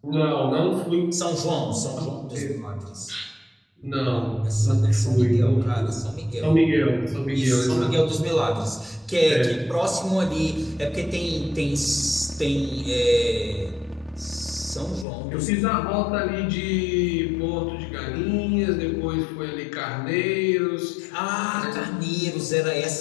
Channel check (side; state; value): right; drops out; at 15.1 s